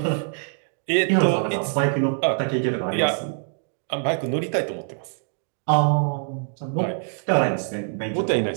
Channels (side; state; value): left; silent; digital silence